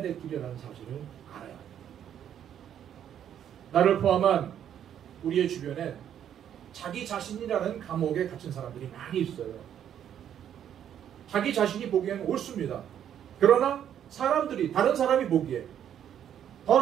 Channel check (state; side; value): quieter; left; 9.7 dB